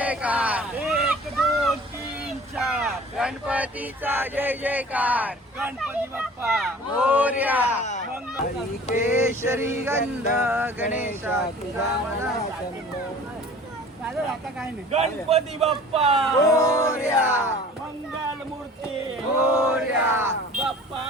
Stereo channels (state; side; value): normal; both; correlation 0.46